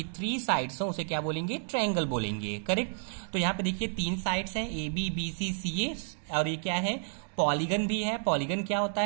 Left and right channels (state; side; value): silent; left; digital silence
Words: 3 साइड्स हो, उसे क्या बोलेंगे? ट्रायंगल बोलेंगे, करेक्ट। तो यहाँ पे देखिए 3 साइड्स हैं, AB BC CA, और ये क्या है? पॉलीगन भी है। पॉलीगन क्या होता